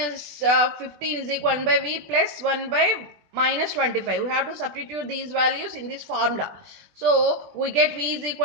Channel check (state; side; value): late; left; 20 ms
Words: 15 is equal to 1 by v plus 1 by minus 25. We have to substitute these values in this formula. So we get v is